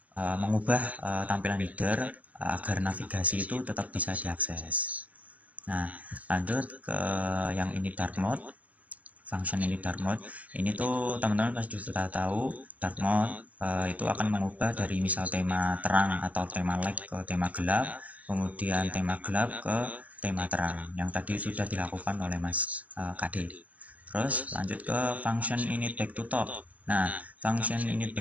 mengubah tampilan header agar navigasi itu tetap bisa diakses. Nah, lanjut ke yang ini dark mode. Function ini dark mode ini tuh teman-teman pasti sudah tahu dark mode itu akan mengubah dari misal tema terang atau tema light ke tema gelap, kemudian tema gelap ke tema terang yang tadi sudah dilakukan oleh Mas KD. Terus lanjut ke function init back to top. Nah, function init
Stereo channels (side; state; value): left; late; 0.072 ms